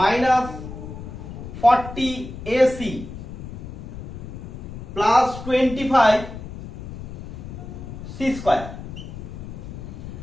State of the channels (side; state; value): left; noise; rumble, 10 dB below the sound